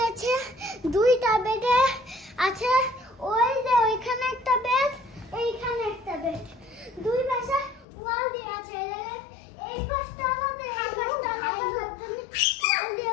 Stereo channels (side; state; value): right; drops out; at 7.9 s